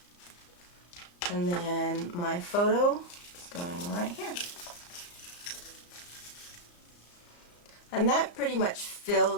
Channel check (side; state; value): right; late; 34 ms